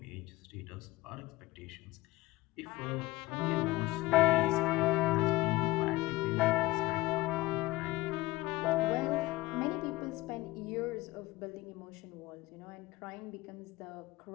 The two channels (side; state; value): right; quieter; 19.0 dB